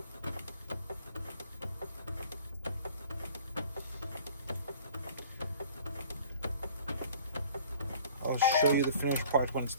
I'll show you the finished part when it's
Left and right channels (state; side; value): inverted; both; correlation -0.49